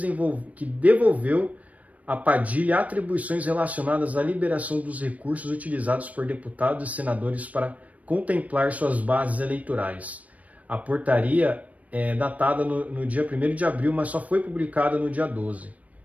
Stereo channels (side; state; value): left; late; 0.069 ms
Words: devolveu a Padilha atribuições relacionadas à liberação dos recursos utilizados por deputados e senadores para contemplar suas bases eleitorais. A portaria é datada no dia 1º de abril, mas só foi publicada no dia 12.